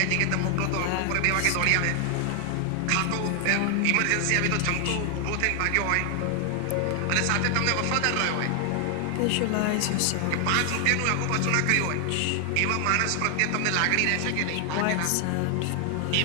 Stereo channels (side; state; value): both; different; correlation 0.00